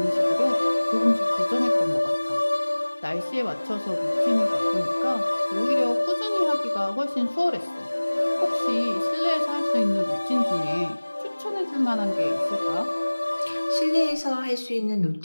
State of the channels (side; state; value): both; inverted; correlation -1.00